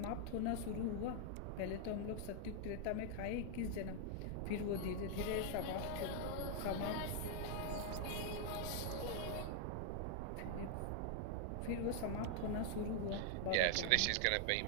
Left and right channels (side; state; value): both; different; correlation 0.00